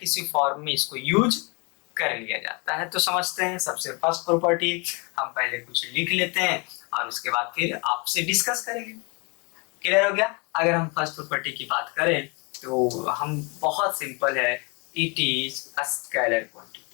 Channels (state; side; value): quieter; right; 31.5 dB